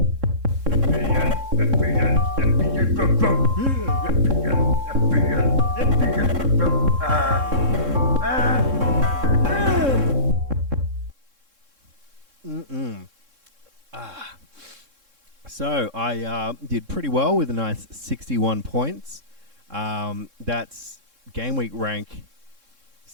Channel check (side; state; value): left; late; 3.7 ms